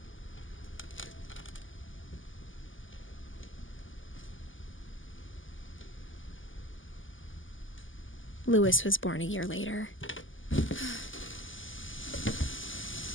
Louis was born a year later.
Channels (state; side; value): late; right; 0.58 ms